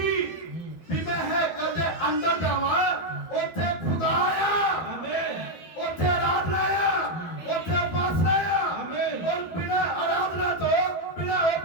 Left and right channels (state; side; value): late; right; 12 ms